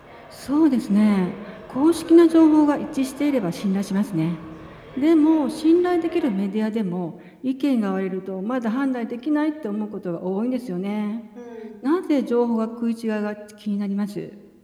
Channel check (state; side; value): identical; both; correlation 1.00